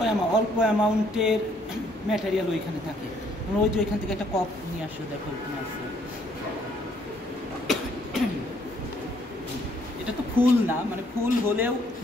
অল্প অ্যামাউন্টের ম্যাটেরিয়াল ওইখানে থাকে। ওই যে ওইখান থেকে একটা কপ নিয়ে আসো, দেখো ওখানে আছে। এটা তো ফুল না, মানে ফুল হলেও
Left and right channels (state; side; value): normal; both; correlation 0.66